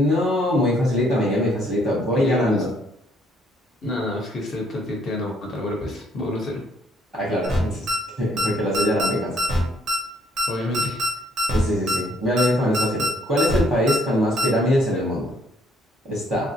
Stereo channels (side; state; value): both; normal; correlation 0.66